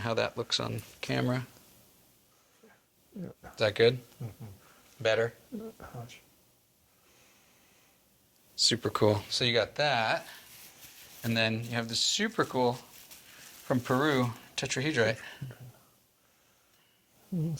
that looks on camera. Is that good? Better? Much. Super cool. So you got that. And then you have this super cool from Peru tetrahedrite.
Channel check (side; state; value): both; identical; correlation 1.00